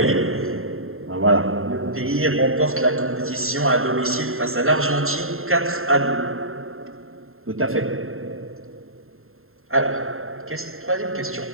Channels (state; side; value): late; left; 0.61 ms